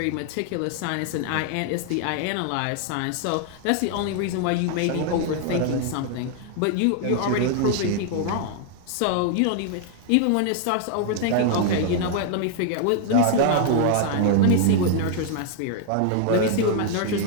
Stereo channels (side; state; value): both; different; correlation 0.00